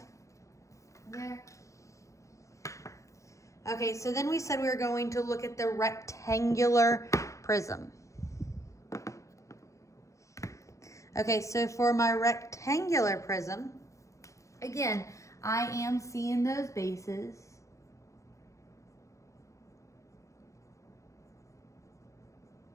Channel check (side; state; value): right; late; 0.15 ms